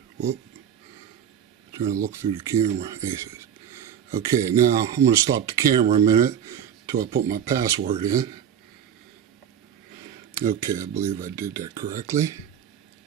Whoop. Trying to look through the camera. Aces. Okay, now I'm going to stop the camera a minute until I put my password in. Okay, I believe I did that correctly.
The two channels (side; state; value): left; quieter; 8.9 dB